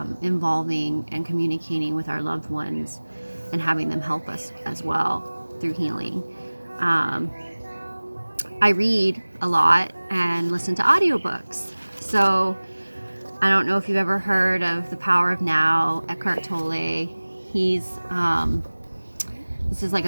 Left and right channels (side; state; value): both; inverted; correlation -1.00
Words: involving and communicating with our loved ones and having them help us as well through healing. I read a lot and listen to audiobooks. So I don't know if you've ever heard of The Power of Now, Eckhart Tolle. This is like